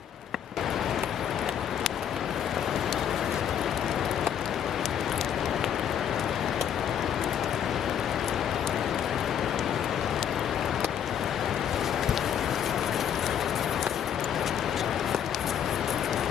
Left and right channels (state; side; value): quieter; right; 9.1 dB